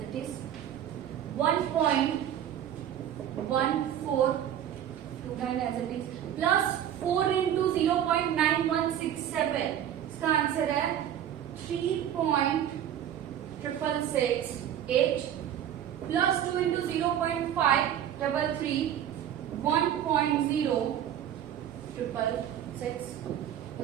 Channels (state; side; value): quieter; left; 10.4 dB